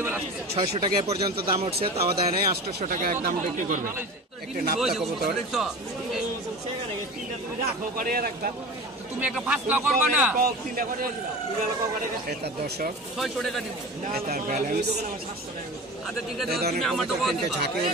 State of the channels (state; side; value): normal; both; correlation 0.33